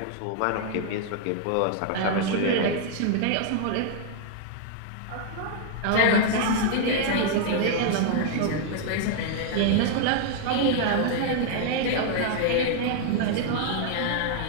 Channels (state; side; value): different; both; correlation 0.00